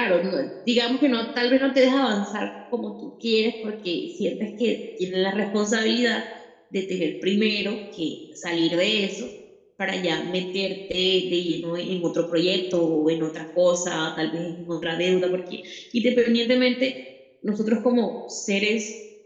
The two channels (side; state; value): both; identical; correlation 1.00